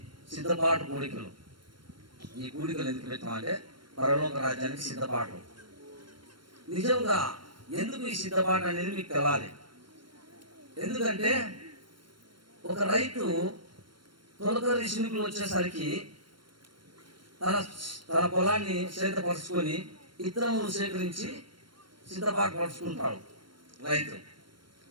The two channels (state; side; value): late; left; 0.72 ms